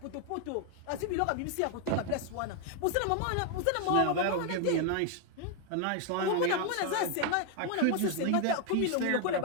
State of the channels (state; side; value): different; both; correlation 0.00